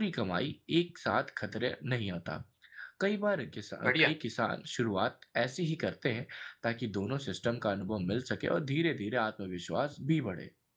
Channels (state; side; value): identical; both; correlation 1.00